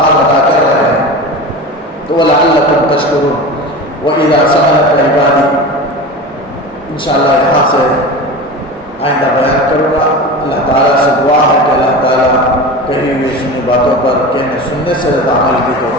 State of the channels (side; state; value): both; normal; correlation 0.30